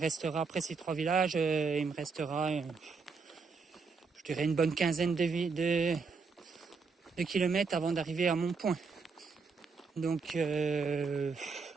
après ces 3 villages, il me restera, je dirais une bonne quinzaine de km avant d'arriver à mon point. Donc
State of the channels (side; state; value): left; quieter; 4.7 dB